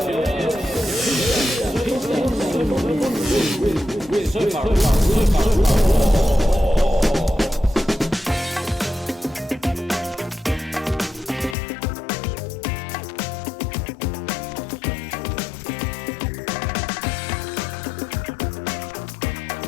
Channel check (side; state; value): right; drops out; at 11.6 s